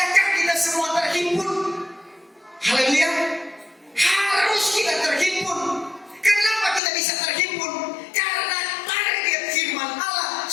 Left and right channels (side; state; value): right; drops out; at 6.8 s